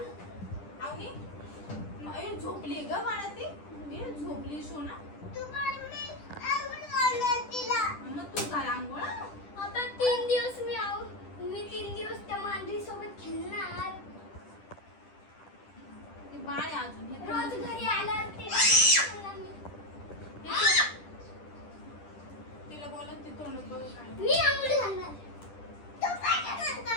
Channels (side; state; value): right; late; 10 ms